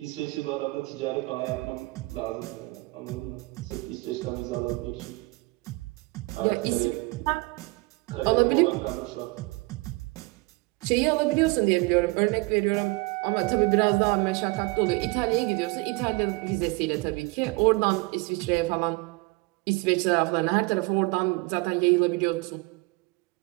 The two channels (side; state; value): left; quieter; 25.4 dB